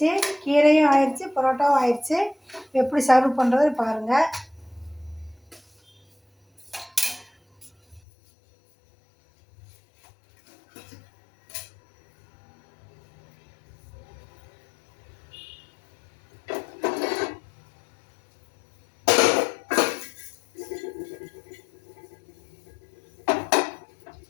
கீரையும் ஆயிடுச்சு, பரோட்டாவும் ஆயிடுச்சு. எப்படி சர்வ் பண்ணுறது பாருங்கள்.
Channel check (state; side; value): drops out; right; at 8.0 s